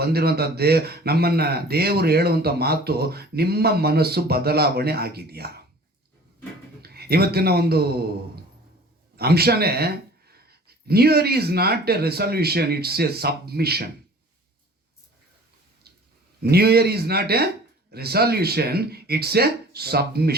ಬಂದಿರುವಂಥ ನಮ್ಮನ್ನು ದೇವರು ಹೇಳುವಂಥ ಮಾತು, ನಿಮ್ಮ ಮನಸ್ಸು ಬದಲಾವಣೆ ಆಗಿದೆಯಾ? ಇವತ್ತಿನ ಒಂದು ಅಂಶನೇ, new year is not a resolution, it's a submission. New year is not a resolution, it's a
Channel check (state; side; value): normal; both; correlation 0.47